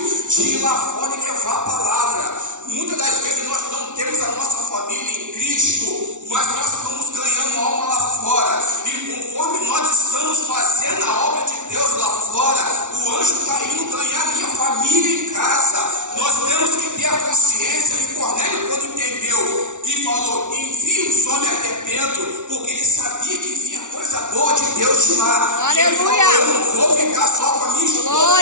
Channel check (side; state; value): left; late; 0.86 ms